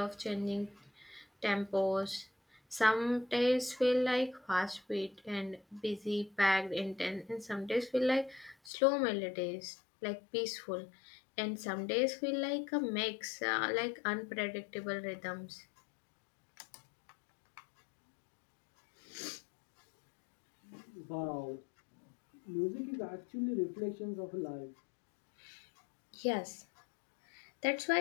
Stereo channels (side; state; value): right; drops out; at 8.7 s